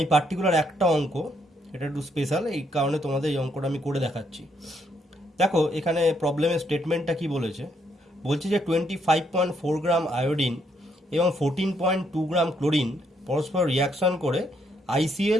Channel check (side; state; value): both; normal; correlation 0.73